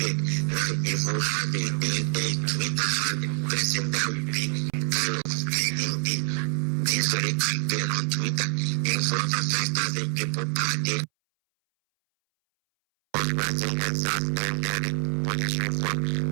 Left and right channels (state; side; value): silent; left; 61 dB below the other